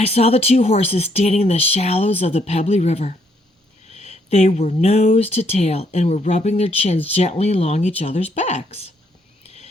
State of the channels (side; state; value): both; normal; correlation 0.71